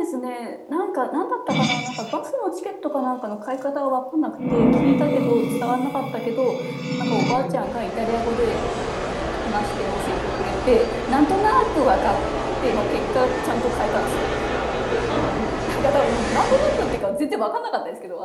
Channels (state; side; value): identical; both; correlation 1.00